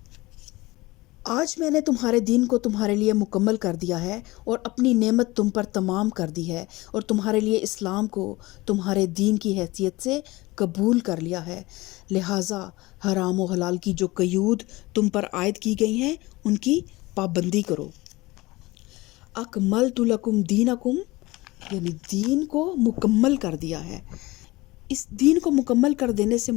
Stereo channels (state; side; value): quieter; right; 20.9 dB